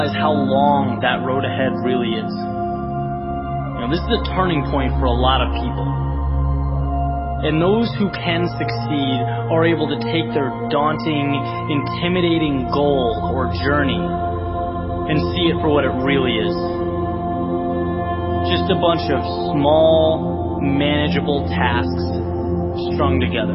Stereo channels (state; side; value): identical; both; correlation 1.00